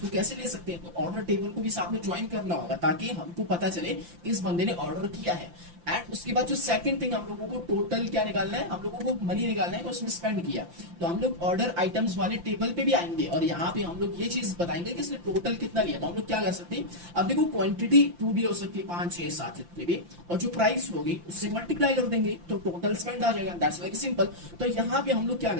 कैसे ले सकते हैं, तो ऑर्डर टेबल को भी साथ में ज्वाइन करना होगा ताकि हमको पता चले कि इस बंदे ने ऑर्डर किया है। एंड उसके बाद जो सेकंड थिंग हम लोगों को टोटल क्या निकालना है, हम लोगों को मनी निकालना है कि उसने स्पेंड किया। तो हम लोग ऑर्डर आइटम्स वाले टेबल पे भी आएंगे और यहाँ पे हम लोग ये चीज बताएंगे कि इसने टोटल कितना लिया। तो हम लोग क्या कर सकते हैं, अब देखो क्वांटिटी 2 भी हो सकती है, 5 6 7 जितने भी, और जो प्राइस होगी उससे मल्टीप्लाई कर देंगे तो टोटल स्पेंड आ जाएगा। That's very simple. तो यहाँ पे हम लोग क्या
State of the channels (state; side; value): late; left; 5.8 ms